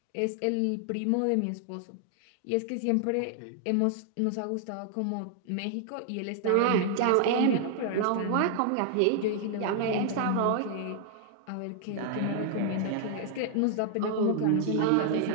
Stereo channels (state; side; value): different; both; correlation 0.00